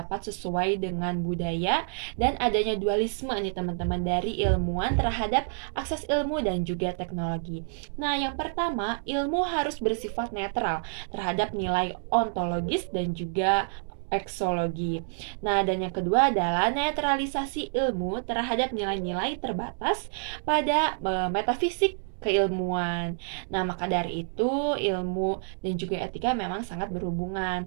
sesuai dengan budaya dan adanya dualisme nih teman-teman dari ilmuwan terhadap akses ilmu dan juga teknologi. Nah, yang pertama, ilmu harus bersifat netral terhadap nilai ontologis dan juga eksologi. Nah, dan yang kedua adalah netralisasi ilmu terhadap nilai-nilai terbatas pada metafisik keilmuan. Nah, maka dari itu ilmu dan juga etika memang sangat berhubungan.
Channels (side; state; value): left; silent; digital silence